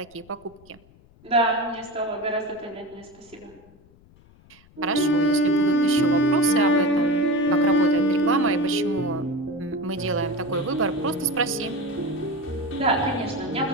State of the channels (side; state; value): left; noise; rumble, 27 dB below the sound